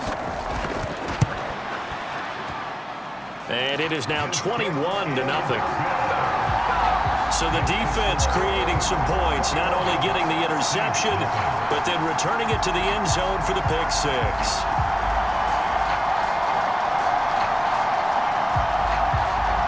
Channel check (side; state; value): both; identical; correlation 1.00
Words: And it is now 21-0. So the defense creating some points, not only getting the interception, but then returning it to the end zone for the pick six.